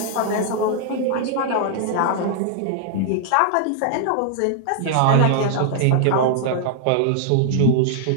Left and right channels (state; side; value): different; both; correlation -0.01